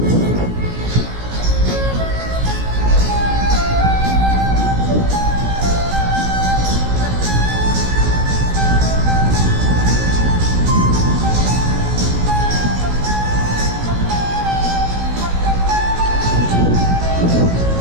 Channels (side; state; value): left; late; 17 ms